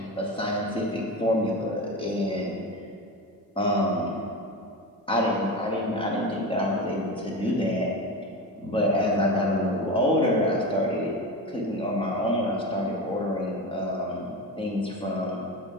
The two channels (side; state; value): both; normal; correlation 0.24